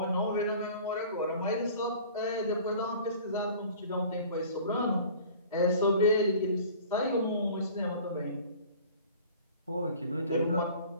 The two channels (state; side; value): inverted; both; correlation -0.46